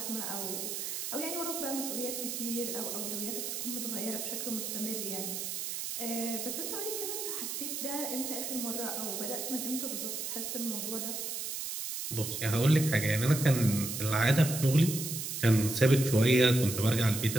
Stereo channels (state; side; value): noise; right; hiss, 4 dB below the sound